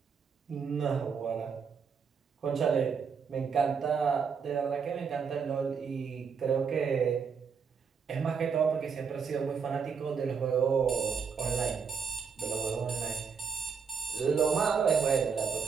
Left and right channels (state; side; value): quieter; left; 6.1 dB